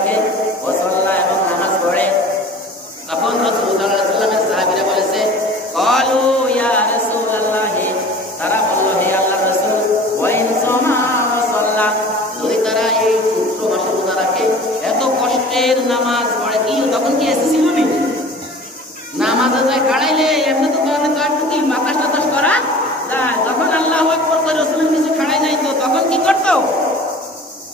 ওয়া সাল্লা, এবং নামাজ পড়ে। তখন রাসূল সাল্লাল্লাহু আলাইহি ওয়াসাল্লামের সাহাবীরা বলেছে, ক্বালু ইয়া রাসূলুল্লাহ, তারা বলল, হে আল্লাহর রাসূল, ওয়া ইন সাওমা ওয়া সাল্লা, যদি তারা এই পুত্র মাসে রোজা রাখে, এত কষ্টের নামাজ পড়ে, কি তখন কি এসে ছিল নি? নামাজে যায় খাড়াইলে এমনি তো একটু কি বাতাস টাতাস করা যায়। যখন আল্লাহু আকবার করে রাসূলের কিছু খাড়াই নাই, তো তখন কি করতো?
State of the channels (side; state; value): both; normal; correlation 0.42